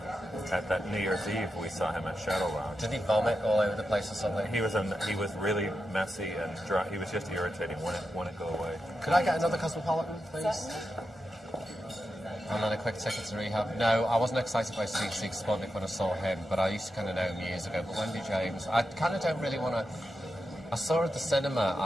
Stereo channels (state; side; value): normal; both; correlation 0.88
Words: at that New Year's Eve. We saw him at Shadow Lounge. Did he vomit all over the place or something? He was really messy and dry. He was just irritating. Wouldn't go away. Could I get another Cosmopolitan, please? Certainly. And then a quick ticket to rehab. No, I wasn't excited by Seek Sputnik when I saw him, but I used to kind of know him years ago. But Wendy James, I kind of don't really want to. I saw her at the cinema,